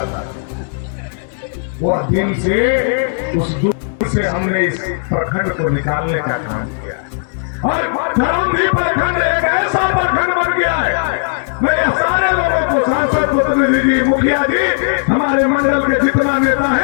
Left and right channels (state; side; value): silent; right; digital silence